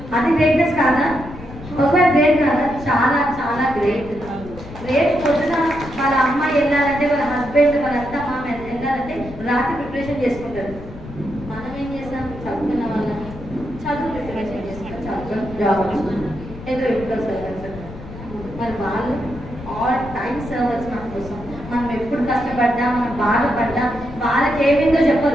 అది గ్రేట్నెస్ కాదా? ఒకవేళ గ్రేట్ కాదా? చాలా చాలా గ్రేట్. రేపు పొద్దున వాళ్ళ అమ్మాయి వెళ్ళాలంటే, వాళ్ళ హస్బెండ్, వాళ్ళంతా మామ వెళ్ళాలంటే రాత్రి ప్రిపరేషన్ చేసుకుంటారు. మనం ఏం చేస్తాం? చదువుకున్న వాళ్ళని చదువు ప్రిపరేషన్ చేసుకుంటాం, చదువుకొని జాబ్ ఏదో ఇంట్లో సర్వీస్. మరి వాళ్ళు ఆల్ టైమ్ సర్వర్స్ మన కోసం. మనం ఎప్పుడు కష్టపడ్డా, మనం బాధపడ్డా వాళ్ళకి ఏమైందో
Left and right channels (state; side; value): noise; left; rumble, 14 dB below the sound